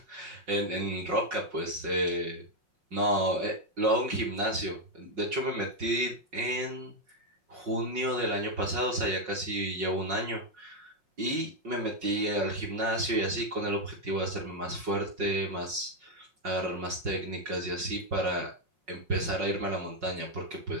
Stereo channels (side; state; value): left; late; 5.5 ms